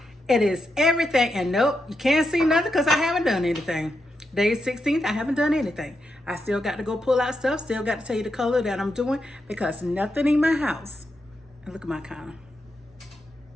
It is everything. And nope, you can't see nothing because I haven't done anything. Day 16th, I haven't done anything. I still got to go pull out stuff. Still got to tell you the color that I'm doing because nothing in my house. And look at my counter.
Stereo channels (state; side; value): normal; both; correlation 0.85